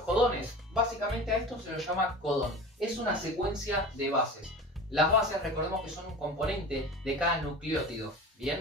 Básicamente a esto se lo llama codón. Es una secuencia de bases. Las bases, recordemos que son un componente de cada nucleótido.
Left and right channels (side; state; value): both; normal; correlation 0.35